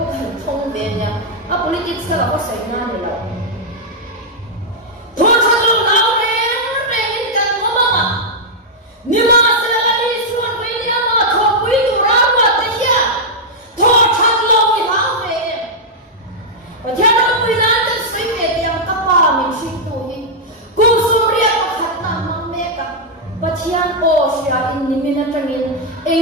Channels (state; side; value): normal; both; correlation -0.05